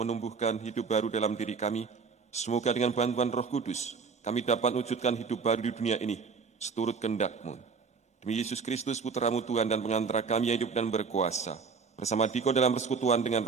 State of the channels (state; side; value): quieter; left; 5.3 dB